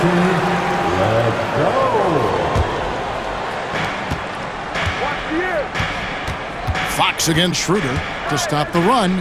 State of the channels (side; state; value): both; identical; correlation 1.00